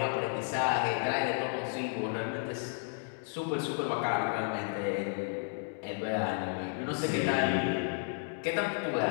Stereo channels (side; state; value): right; silent; 56 dB below the other